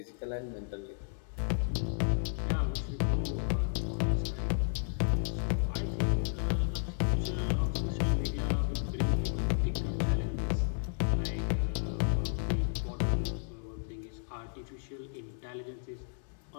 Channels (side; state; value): right; silent; digital silence